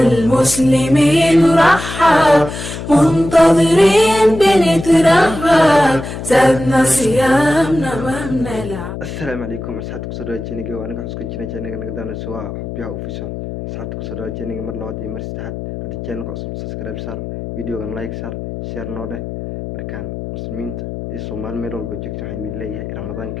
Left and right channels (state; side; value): noise; left; hum, 8 dB below the sound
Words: رحب، منتظرين بنترهب، زادنا صيامنا ما بنلعب. السلام عليكم أصحابي كسر جينيجا وأنا كحس كجينا جينيجا نقدر نسوا حبيها وفيشل أصحابي كسر جينيجا مر لوادي مرستحد هذا الجيل كأصل سبسكرايب صار فيديو كان لايك صار شير نوده مركان مسلمين الصومال ميرول بجكت حين الله رمضان